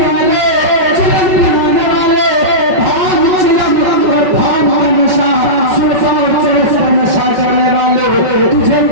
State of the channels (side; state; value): left; late; 5.4 ms